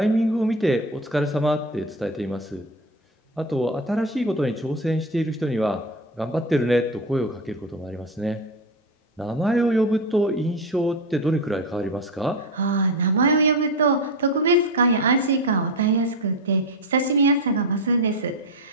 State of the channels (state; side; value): normal; both; correlation 0.19